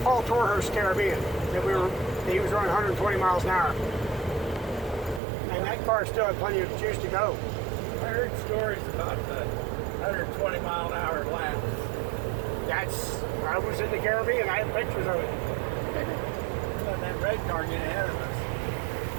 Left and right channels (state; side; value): drops out; left; at 5.2 s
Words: Paul Torhurst's Caribbean that he was running 120 miles an hour. And that car still had plenty of juice to go. I heard stories about the 120 mile an hour laps. I was in the Caribbean, I had pictures of it. Let that red car get ahead of us.